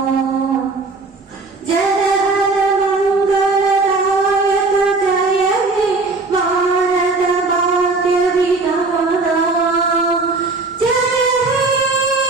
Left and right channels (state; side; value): quieter; left; 3.7 dB